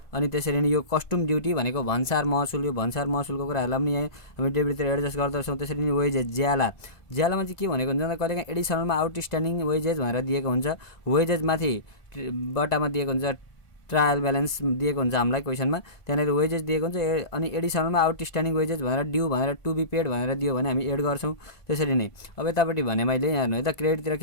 अनि त्यसरी नै यो कस्टम ड्युटी भनेको भन्सार महसुल, यो भन्सार महसुलको कुराहरूलाई पनि यहाँ हामी डेबिटतिर एडजस्ट गर्दछौँ। त्यसरी नै वेजेज, ज्यालामा चाहिँ के भनेको हुन्छ कहिलेकाहीँ एडिसनलमा आउटस्ट्यान्डिङ वेजेज भनेर दिएको हुन्छ। वेजेजमाथि बट्टामा दिएको हुन्छ ट्रायल ब्यालेन्स दिएको हुन्छ हामीलाई क्वेसनमा, त्यहाँनिर वेजेज दिएको हुन्छ। अनि एडिसनलमा आउटस्ट्यान्डिङ वेजेज भनेर ड्यू भनेर टु बी पेड भनेर दियो भने हामी एड गर्छौँ। त्यसरी नै अब यतापट्टि भने मैले हेर्नु है त, क्रेडिटतिर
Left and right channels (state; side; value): late; right; 1.5 ms